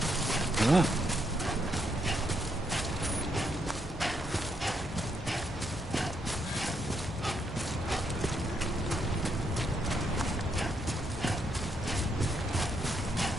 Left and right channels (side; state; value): both; normal; correlation 0.77